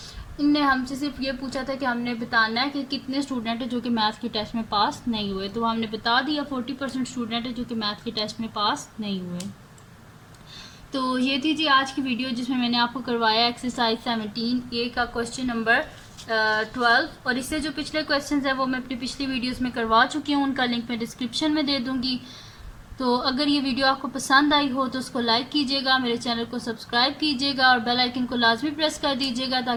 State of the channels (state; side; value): identical; both; correlation 1.00